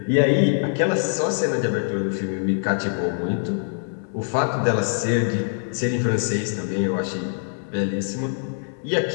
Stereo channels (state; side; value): silent; right; digital silence